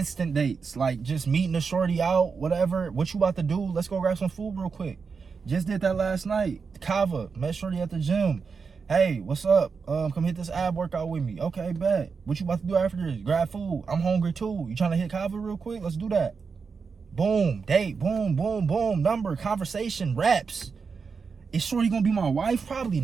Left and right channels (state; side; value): quieter; left; 5.3 dB